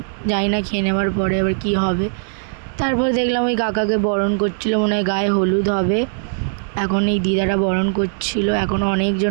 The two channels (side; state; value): left; silent; 62 dB below the other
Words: জানি না খেয়ে নেওয়ার পরে এবার কী হবে। তারপরে দেখলাম ওই কাকাকে বরণ করছিল, মনে হয় গায়ে হলুদ হবে। এখন এই দিদারা বরণ করছিল, এখনও